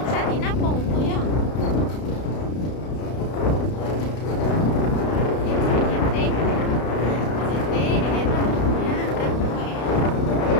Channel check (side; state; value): right; late; 32 ms